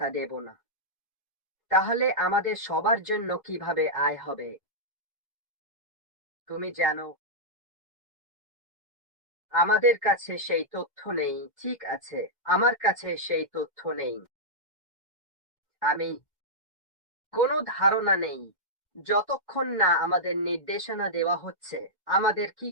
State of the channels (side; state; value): both; normal; correlation -0.10